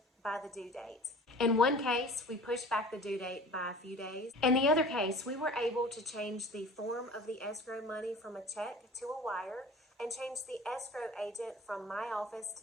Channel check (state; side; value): normal; both; correlation 0.42